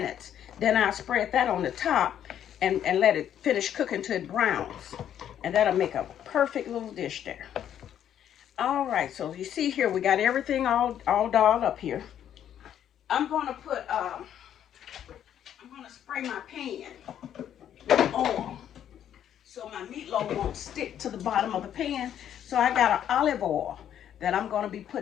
Then I'll spread that on the top and let it finish cooking till it browns. And that'll make a perfect little dish there. All right, so you see here, we got everything all dolled up here. I'm gonna put, I'm gonna spray my pan with oil so my meatloaf won't stick to the bottom of the pan. So I got an olive oil that I'm gonna be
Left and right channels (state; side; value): quieter; right; 10.1 dB